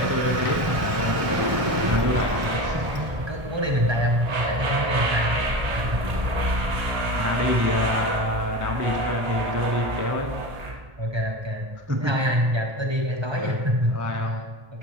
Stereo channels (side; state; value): left; late; 1.0 ms